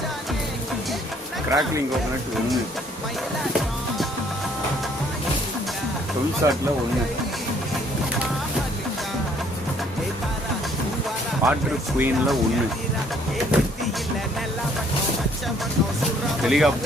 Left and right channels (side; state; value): both; normal; correlation 0.63